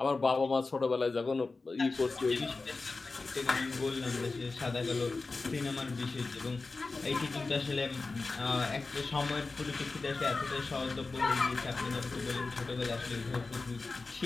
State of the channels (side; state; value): right; quieter; 3.8 dB